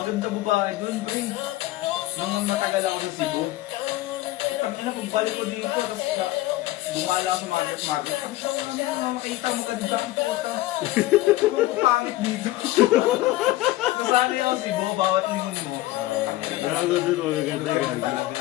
babae doon, pre. Nung matagal ako sa Cebu, tangina, pagbalik ko dito, tapos bumala ako sa market. Sabi siya, ano, makita mo ganda ang puta. Kung pangit dito. Nasali ako Cebu, bawat lingon mo. Gago doon, magaganda, gago. Talaga.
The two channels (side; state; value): right; quieter; 17.2 dB